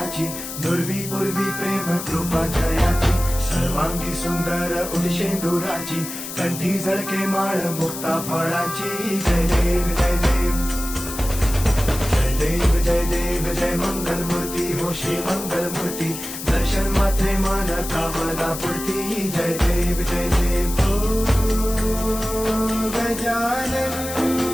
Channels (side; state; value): left; noise; hiss, 8 dB below the sound